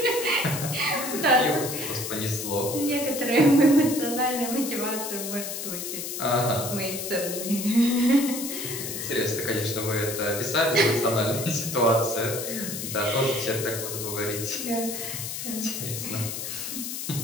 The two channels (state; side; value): noise; left; hiss, 6 dB below the sound